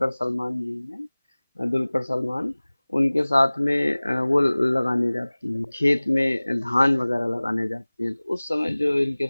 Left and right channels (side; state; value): both; inverted; correlation -1.00